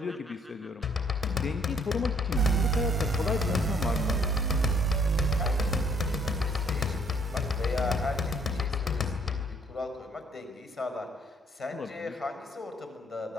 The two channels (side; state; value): both; normal; correlation 0.64